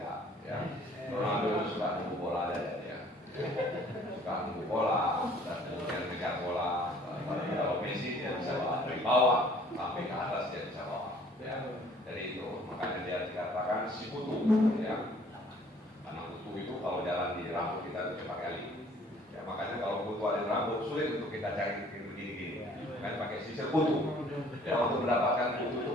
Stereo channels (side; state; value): both; normal; correlation 0.56